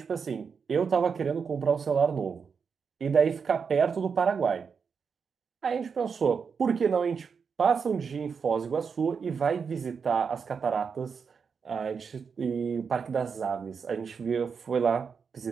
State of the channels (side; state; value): left; quieter; 6.0 dB